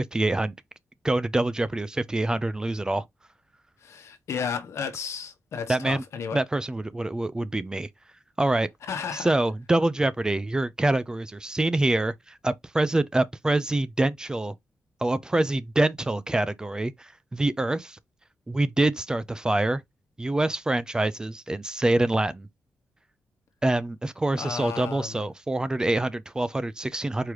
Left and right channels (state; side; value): normal; both; correlation 0.94